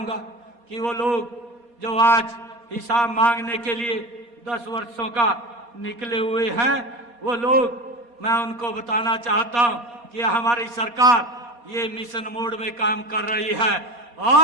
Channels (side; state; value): left; late; 4.2 ms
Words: कि वो लोग जो आज हिसाब मांगने के लिए 10 वर्षों का निकले हुए हैं, वो लोग, मैं उनको बताना चाहता हूं कि हमारी सरकार ये मिशन मोड में काम कर रही है